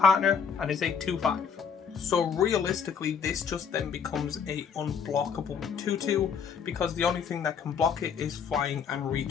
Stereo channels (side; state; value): right; quieter; 6.8 dB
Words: and is a 2/5. So realistically, this just then becomes a unblockable 2/2 because the only thing that can block it is flying and